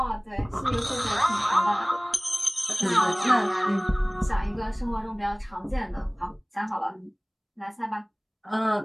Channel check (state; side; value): identical; both; correlation 1.00